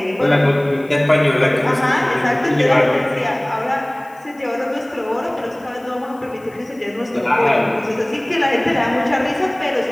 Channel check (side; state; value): left; noise; hiss, 29 dB below the sound